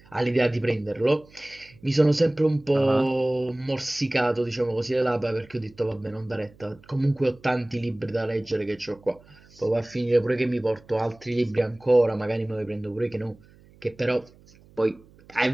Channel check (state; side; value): noise; right; hum, 27 dB below the sound